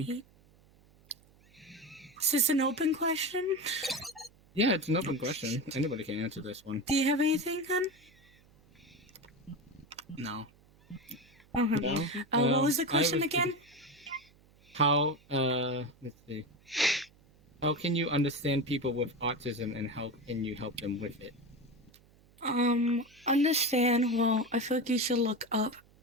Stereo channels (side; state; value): right; noise; hum, 29 dB below the sound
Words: Is this an open question? Yeah, it's an open question. Anybody can answer this one. Do you have anything, hun? No. Okay. No. What was the I question was again? how let's see. How can you understand people with autism and how can you help them with it? Understand. Well, I feel like you should look up